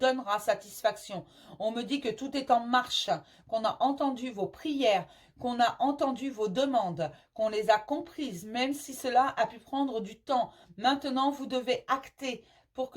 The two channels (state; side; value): identical; both; correlation 1.00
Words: satisfaction. On me dit que tout est en marche, qu'on a entendu vos prières, qu'on a entendu vos demandes, qu'on les a comprises, même si cela a pu prendre du temps. Maintenant, vous devez acter pour